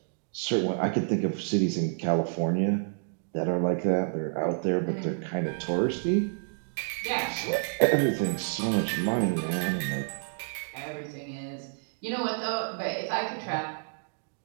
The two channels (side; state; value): left; silent; digital silence